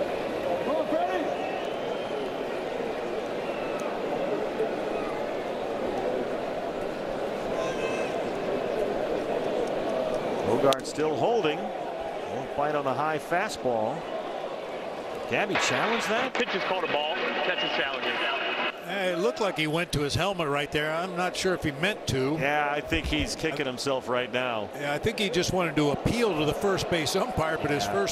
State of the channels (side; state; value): both; identical; correlation 1.00